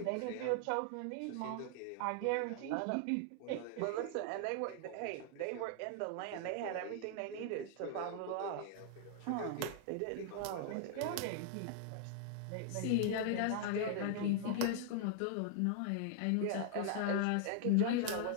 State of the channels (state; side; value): different; both; correlation 0.00